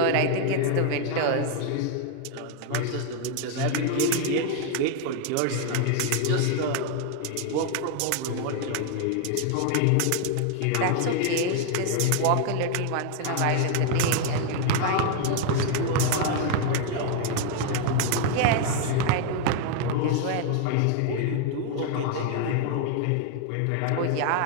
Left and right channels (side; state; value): both; different; correlation 0.00